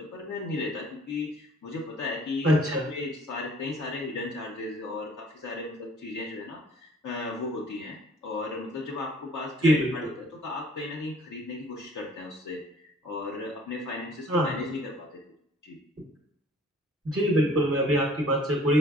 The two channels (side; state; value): both; normal; correlation 0.54